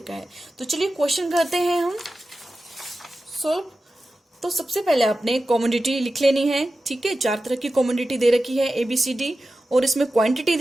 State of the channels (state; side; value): normal; both; correlation 0.93